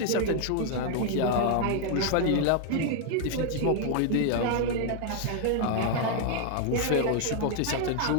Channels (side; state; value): both; different; correlation 0.00